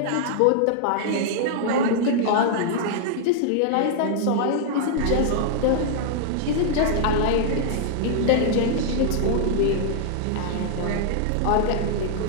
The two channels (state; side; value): different; both; correlation -0.01